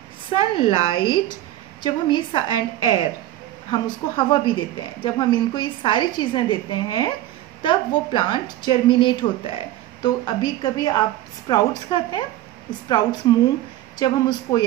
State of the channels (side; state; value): left; quieter; 14.1 dB